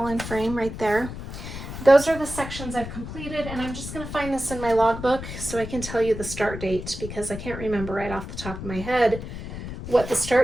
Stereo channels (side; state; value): left; noise; rumble, 9 dB below the sound